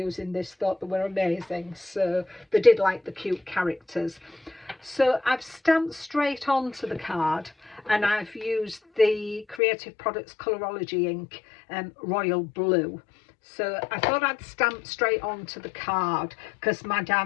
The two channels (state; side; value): drops out; right; at 9.6 s